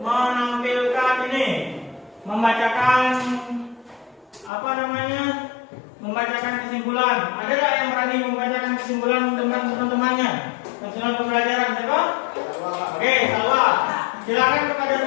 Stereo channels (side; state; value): right; drops out; at 4.5 s